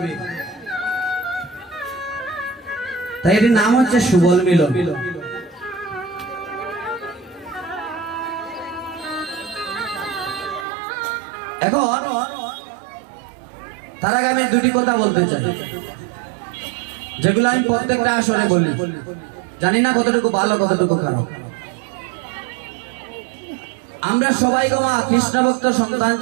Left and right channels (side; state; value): left; drops out; at 10.7 s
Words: তাই এটির নাম হচ্ছে সুবল মিলন। এখন তার আগে আমি দুটি কথা বলতে চাই, যেগুলো আমি প্রত্যেকটা আসরে বলি, জানি না কতটুকু ভালো কতটুকু খারাপ। আমরা সবাই গোমা কৃষ্ণ ভক্ত সন্তান